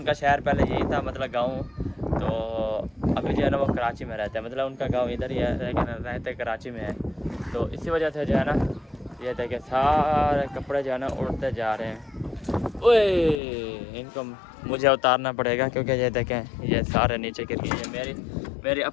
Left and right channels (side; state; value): right; drops out; at 13.4 s